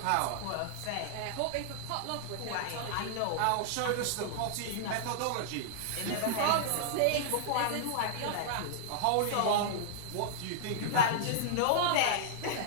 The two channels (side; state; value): both; different; correlation -0.02